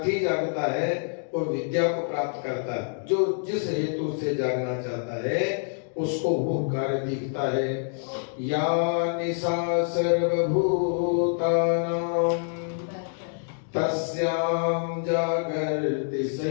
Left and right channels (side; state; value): right; silent; digital silence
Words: जागता है वो विद्या को प्राप्त करता है। जो जिस हेतु से जागना चाहता है उसको वो कार्य दिखता है। या निशा सर्वभूतानां तस्यां जागर्ति